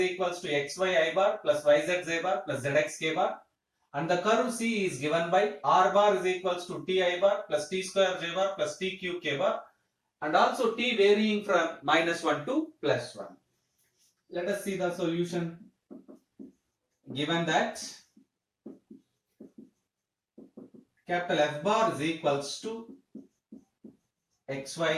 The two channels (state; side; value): identical; both; correlation 1.00